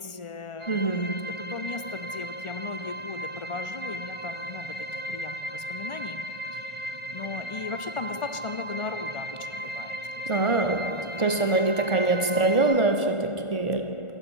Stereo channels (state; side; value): late; right; 1.4 ms